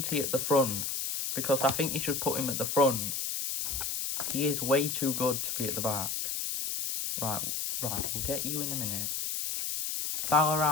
he at the front? Because I think you should put him at the front. He is way too good to be at the back. Right, we'll get you in a minute.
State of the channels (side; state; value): left; noise; hiss, 2 dB below the sound